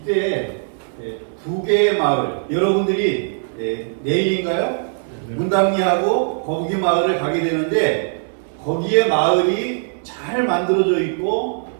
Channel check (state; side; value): silent; left; digital silence